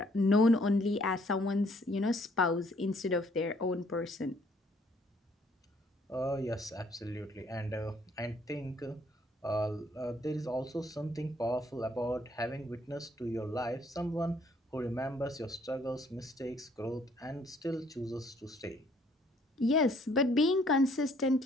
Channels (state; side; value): normal; both; correlation 0.64